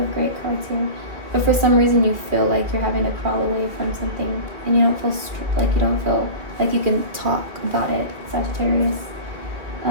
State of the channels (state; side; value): late; left; 2.3 ms